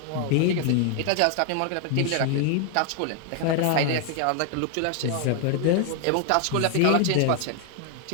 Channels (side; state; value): both; different; correlation 0.00